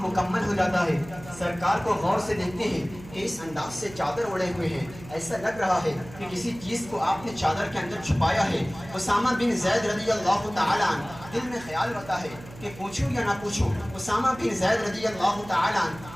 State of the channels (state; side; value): noise; right; hum, 17 dB below the sound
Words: مکمل ہو جاتا ہے سرکار کو غور سے دیکھتے ہیں کہ اس انداز سے چادر اوڑے ہوئے ہیں, ایسا لگ رہا ہے کہ کسی چیز کو آپ نے چادر کے اندر چھپایا ہے. اسامہ بن زید رضی اللہ تعالی عنہ دل میں خیال ہوتا ہے کہ پوچھوں یا نہ پوچھوں. اسامہ بن زید رضی اللہ تعالی عنہ